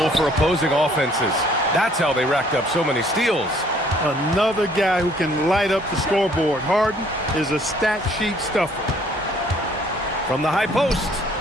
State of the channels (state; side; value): normal; both; correlation 0.60